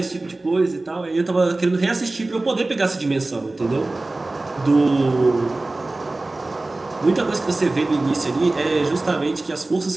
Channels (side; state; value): left; quieter; 3.0 dB